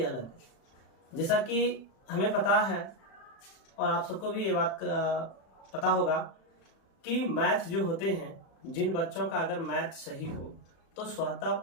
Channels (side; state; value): right; late; 36 ms